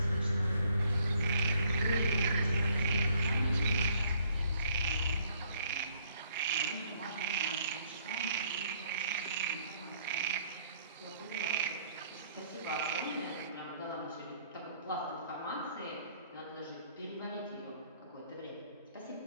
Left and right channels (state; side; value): inverted; both; correlation -0.64